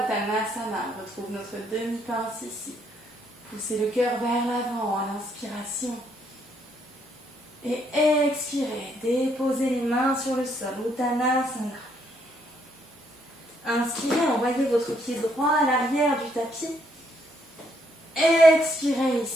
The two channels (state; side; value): normal; both; correlation 0.72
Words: Uttanasana, on retrouve notre demi-pince ici. Poussez le cœur vers l'avant à l'inspiration. Et expirez, déposez les mains sur le sol, Uttanasana. Inspirez, envoyez votre pied droit à l'arrière du tapis. Expirez